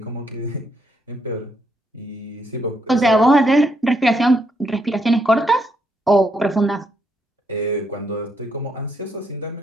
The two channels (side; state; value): both; normal; correlation 0.76